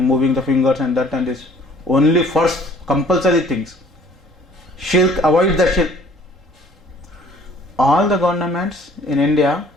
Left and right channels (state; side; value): normal; both; correlation 0.55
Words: moving the fingers and that and this. Only first compulsory things. Shirk, avoid the shirk. All the governments in India,